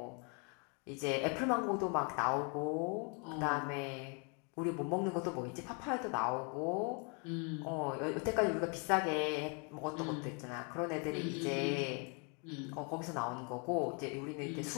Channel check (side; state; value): right; quieter; 36.0 dB